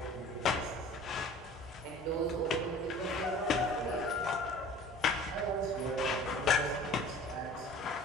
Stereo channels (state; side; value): normal; both; correlation 0.45